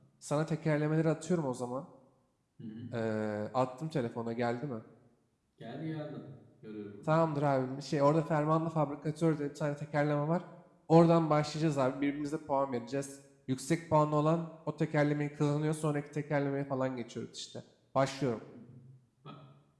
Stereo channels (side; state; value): both; identical; correlation 1.00